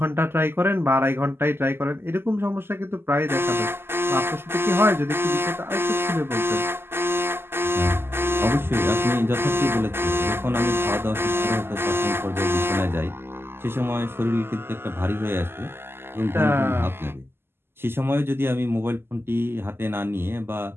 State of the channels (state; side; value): late; left; 0.11 ms